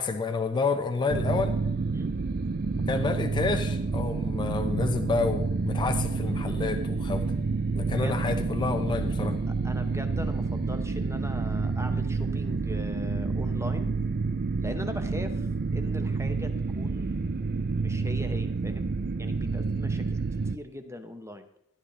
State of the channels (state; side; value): normal; both; correlation 0.71